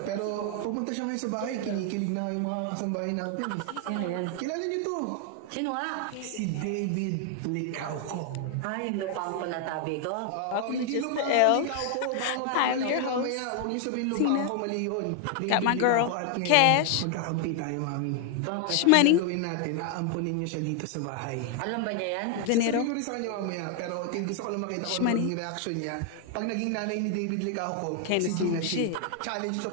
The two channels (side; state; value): both; different; correlation 0.00